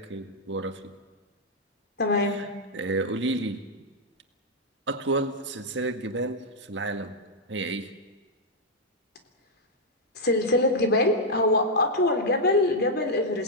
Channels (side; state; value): both; normal; correlation -0.03